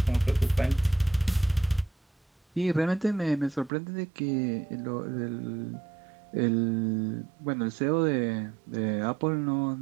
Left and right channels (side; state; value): left; drops out; at 3.7 s